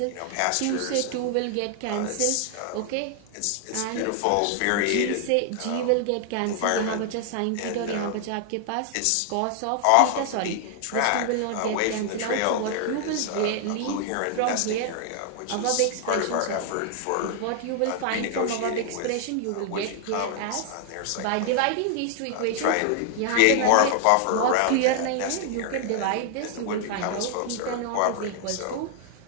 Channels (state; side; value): different; both; correlation 0.00